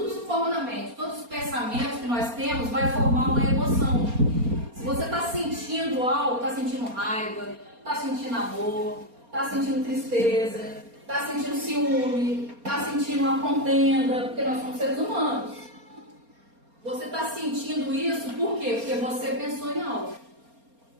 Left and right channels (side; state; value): left; late; 4.3 ms